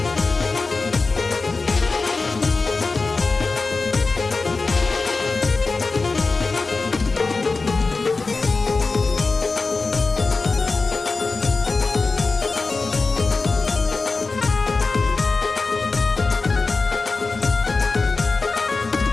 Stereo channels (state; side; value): quieter; right; 3.9 dB